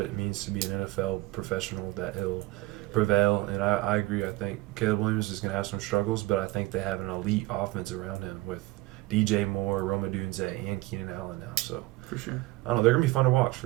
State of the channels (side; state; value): left; quieter; 19.5 dB